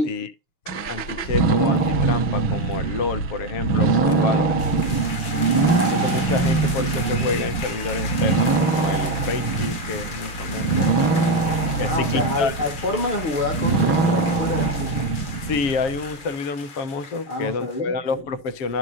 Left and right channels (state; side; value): late; right; 7.0 ms